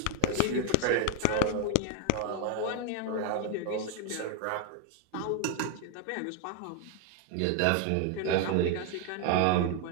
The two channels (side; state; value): both; different; correlation 0.00